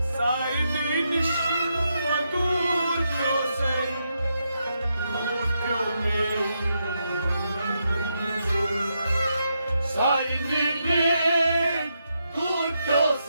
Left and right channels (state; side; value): inverted; both; correlation -0.83